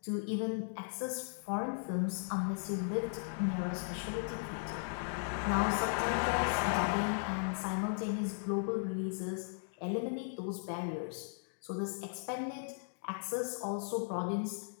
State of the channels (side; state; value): right; silent; digital silence